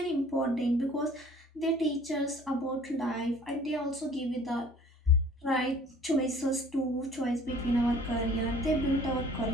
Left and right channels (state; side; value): normal; both; correlation 0.51